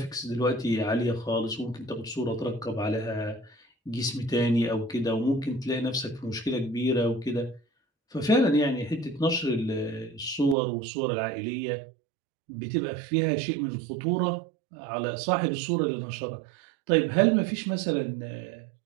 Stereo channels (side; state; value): left; drops out; at 10.6 s